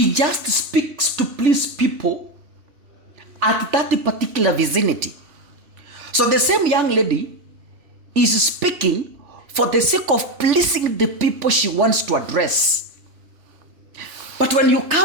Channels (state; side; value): late; left; 3.1 ms